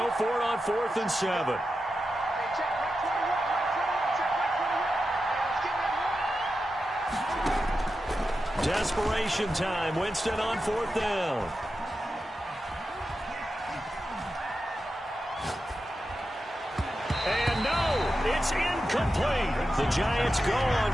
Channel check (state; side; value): normal; both; correlation 0.90